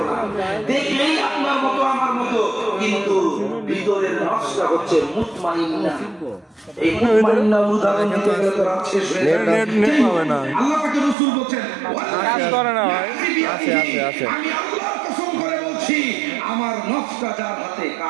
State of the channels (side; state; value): left; drops out; at 11.2 s